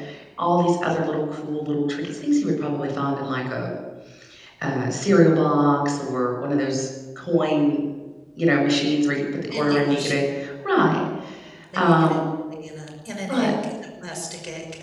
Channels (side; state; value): both; identical; correlation 1.00